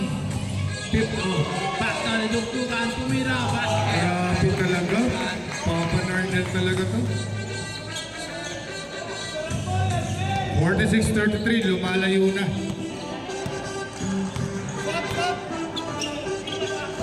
Back na ni Duktukan. Tumira. Basket. Grabe talaga. Papa Nardel talaga to. 46-33, lumalayo na.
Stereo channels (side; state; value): both; identical; correlation 1.00